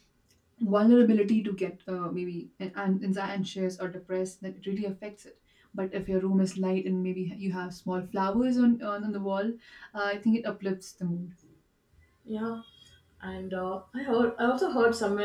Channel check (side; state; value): both; identical; correlation 1.00